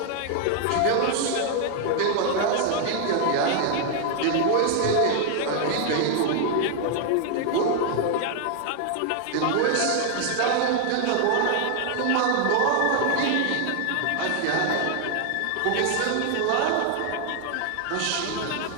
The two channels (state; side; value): different; both; correlation 0.00